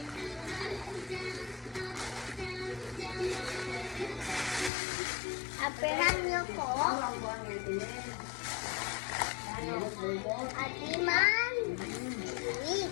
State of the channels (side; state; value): right; drops out; at 4.7 s